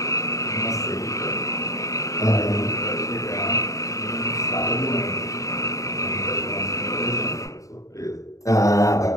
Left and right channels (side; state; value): right; late; 0.16 ms